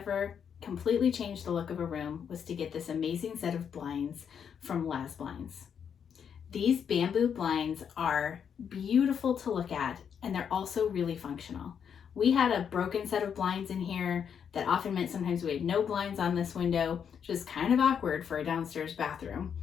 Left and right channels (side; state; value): right; quieter; 7.6 dB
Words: completely changed the look of a room was to get this amazing set of blinds from LazBlinds. These bamboo blinds are beautiful to look at, and they're also really functional. We had a broken set of blinds in here that often meant sometimes we had no blinds on this window, which is kind of awkward for a downstairs bathroom,